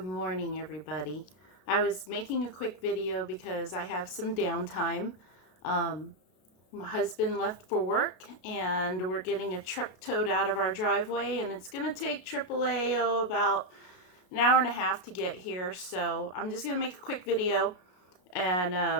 morning, everybody. I was making a quick video because I have some downtime. My husband left for work and we're getting a truck towed out of our driveway, and it's going to take AAA about an hour and a half to get here. So I'm just going to make a quick video,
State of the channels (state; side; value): late; right; 32 ms